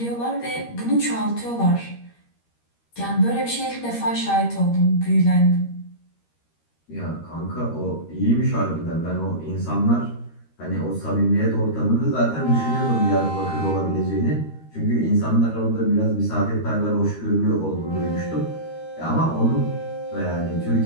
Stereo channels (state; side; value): late; right; 13 ms